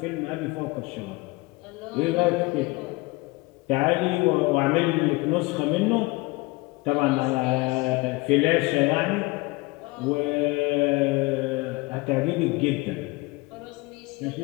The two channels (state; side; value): quieter; right; 23.9 dB